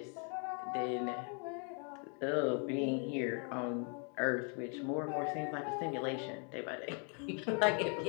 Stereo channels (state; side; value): quieter; right; 39.3 dB